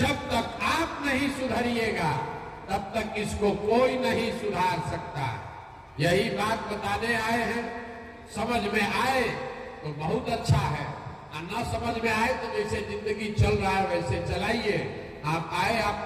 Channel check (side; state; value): both; identical; correlation 1.00